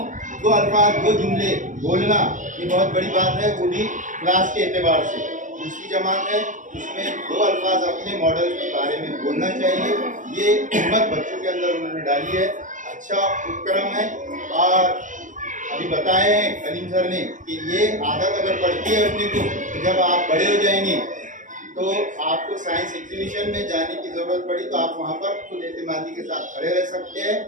2 अल्फाज 2 जुमले बोलना, ये बहुत बड़ी बात है, वो भी क्लास के एतबार से। दूसरी जमात है उसमें 2 अल्फाज अपने मॉडल के बारे में बोलना चाहिए, ये हिम्मत बच्चों के अंदर उन्होंने डाली है। अच्छा उपक्रम है। और अभी बताए हैं कलीम सर ने कि ये आदत अगर पड़ती है अपने को तो जब आप बड़े हो जाएंगे तो आपको साइंस एग्जीबिशन में जाने की ज़रूरत पड़ी तो आप वहाँ पर खुद एतमादी के साथ खड़े रह सकते हैं,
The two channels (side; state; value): left; late; 0.37 ms